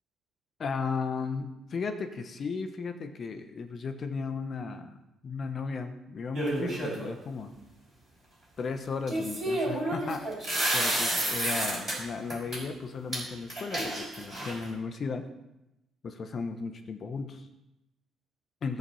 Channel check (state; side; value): normal; both; correlation 0.76